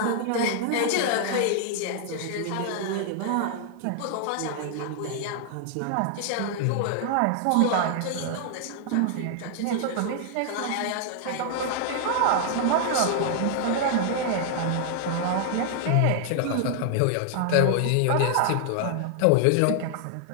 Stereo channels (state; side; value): different; both; correlation 0.00